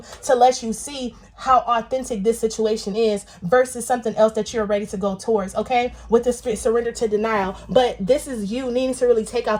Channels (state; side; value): identical; both; correlation 1.00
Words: to let you see how authentic this situation is versus something else that you're ready to go towards, okay? With the surrender to denial. But this is you needing to really take